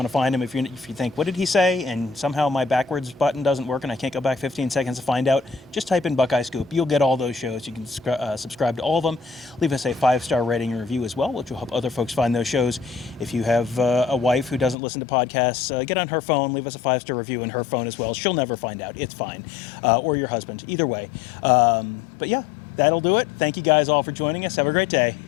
to find them. If you think, what did he say? And somehow my backwards button doesn't work and I can't go back 15 seconds to find out, just type in Buckeye Scoop. You'll get all those shows. You can subscribe to all of them. Leave us a 5-star rating and review as well, which will help other folks find those shows. If you have a wife who doesn't listen to podcasts, get on her phone, leave us a 5-star review in her phone as well. She'll never find out. It's fine. Or your husband. Either way. But yeah, that'll do it. Thank you guys all for joining us. Have a great day,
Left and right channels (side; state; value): right; drops out; at 14.8 s